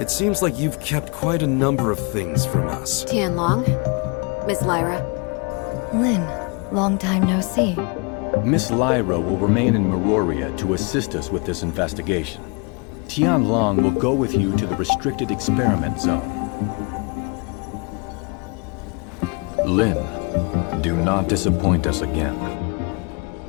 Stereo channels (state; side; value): quieter; right; 31.3 dB